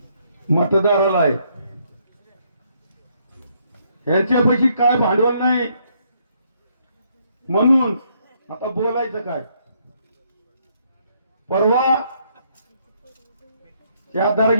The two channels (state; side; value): inverted; both; correlation -0.71